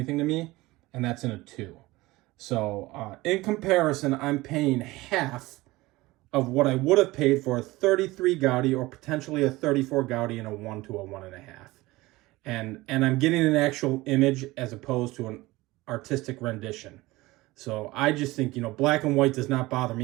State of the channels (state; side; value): quieter; left; 19.8 dB